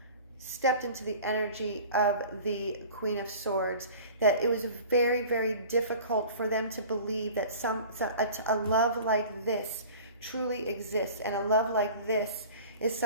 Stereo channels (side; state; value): both; inverted; correlation -0.42